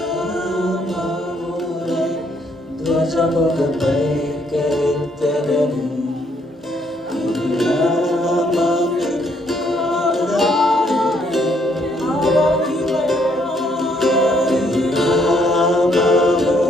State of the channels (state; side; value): normal; both; correlation 0.70